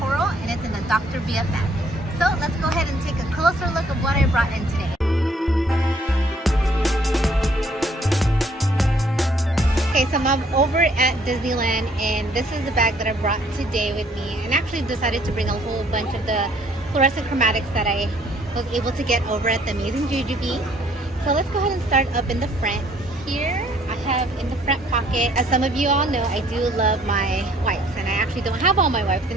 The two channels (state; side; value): normal; both; correlation 0.62